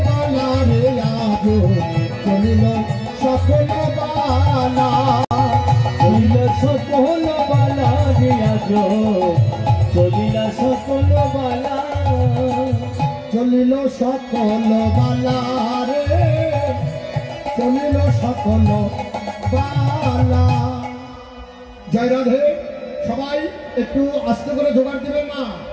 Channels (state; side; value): identical; both; correlation 1.00